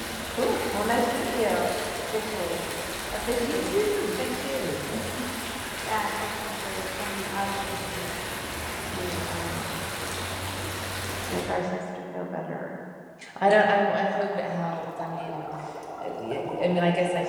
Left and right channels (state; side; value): identical; both; correlation 1.00